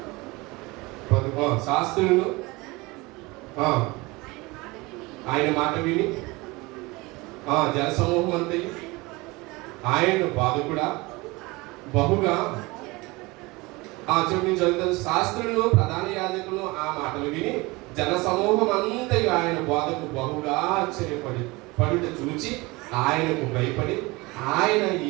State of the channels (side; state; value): left; quieter; 23.5 dB